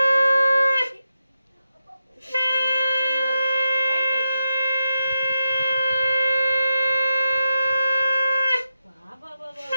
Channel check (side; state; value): both; inverted; correlation -0.89